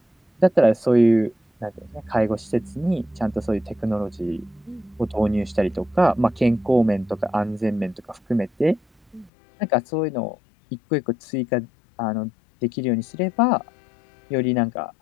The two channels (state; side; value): drops out; right; at 9.3 s